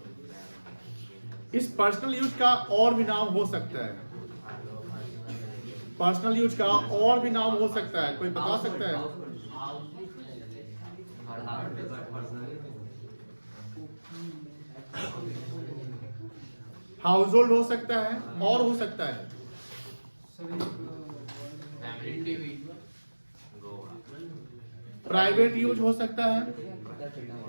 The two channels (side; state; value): both; inverted; correlation -1.00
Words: इस पर्सनल यूज का और भी नाम हो सकता है, पर्सनल यूज का और भी नाम हो सकता है, कोई बता सकता है? हाउस होल्ड हो सकता है, और हो सकता है प्राइवेट यूज हो सकता है,